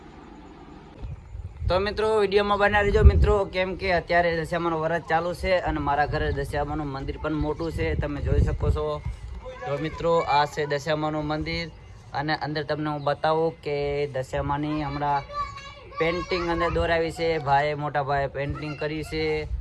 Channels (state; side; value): identical; both; correlation 1.00